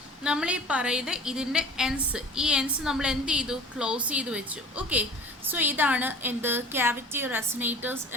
നമ്മൾ ഈ പറയുന്നത് ഇതിൻ്റെ ഈ എൻസ് നമ്മൾ എന്ത് ചെയ്തു, ക്ലോസ് ചെയ്ത് വെച്ചു. ഓക്കെ, സോ ഇതാണ് എന്ത്, ക്യാവിറ്റി റെസനേറ്റേഴ്സ്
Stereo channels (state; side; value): normal; both; correlation 0.42